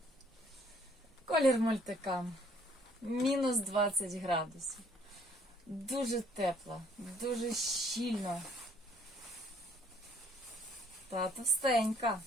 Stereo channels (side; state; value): both; normal; correlation 0.62